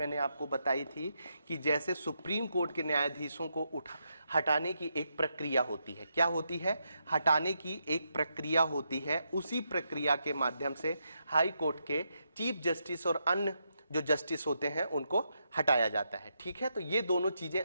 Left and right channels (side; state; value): both; inverted; correlation -0.82